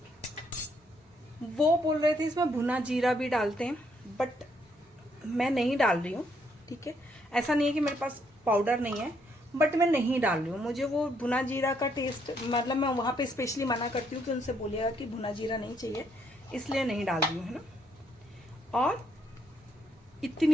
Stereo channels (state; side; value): normal; both; correlation 0.73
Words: वो बोल रहे थे इसमें भुना जीरा भी डालते हैं, बट मैं नहीं डाल रही हूँ, ठीक है। ऐसा नहीं है कि मेरे पास पाउडर नहीं है, बट मैं नहीं डाल रही हूँ। मुझे वो भुना जीरा का टेस्ट, मतलब मैं वहाँ पे स्पेशली मना करती हूँ कि उनसे बोलिएगा कि भुना जीरा नहीं चाहिए, इसलिए नहीं डाल रही हूँ, है ना। और